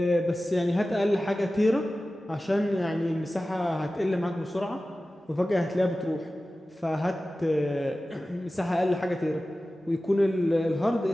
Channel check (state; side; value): normal; both; correlation 0.95